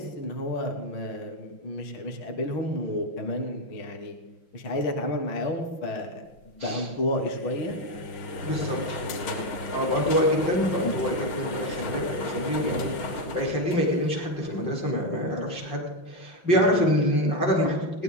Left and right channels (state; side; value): late; right; 5.8 ms